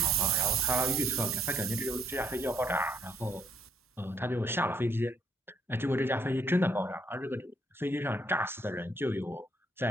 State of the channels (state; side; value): normal; both; correlation 0.69